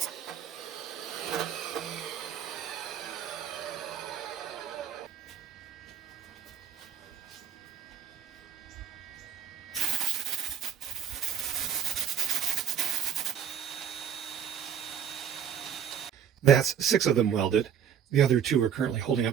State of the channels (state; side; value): quieter; left; 8.7 dB